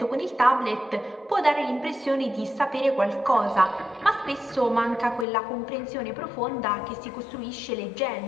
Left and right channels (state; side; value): drops out; right; at 5.2 s